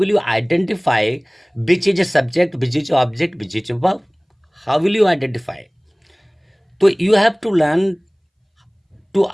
you identify which is a subject, which is object, which is verb, how will you identify. तो you have to learn to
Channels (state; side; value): identical; both; correlation 1.00